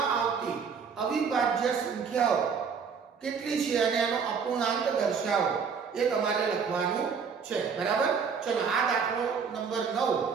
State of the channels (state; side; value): quieter; left; 6.1 dB